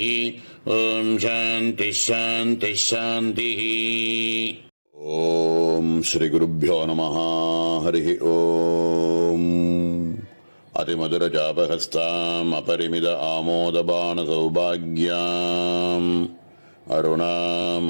ஓம் சாந்தி சாந்தி சாந்தி. ஓம் ஸ்ரீ குருப்யோ நமஹ. ஹரி ஓம். அதிமதுரஜாபஹஸ்தாம் அபரிமித ஆமோதபான சௌபாக்யாம் அருணாம்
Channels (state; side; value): inverted; both; correlation -1.00